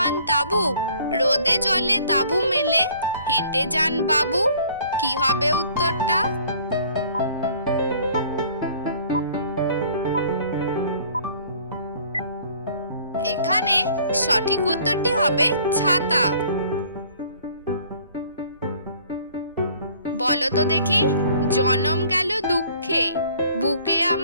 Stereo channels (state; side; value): inverted; both; correlation -0.55